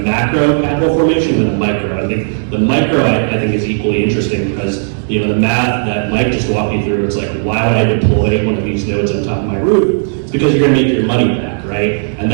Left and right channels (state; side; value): silent; left; digital silence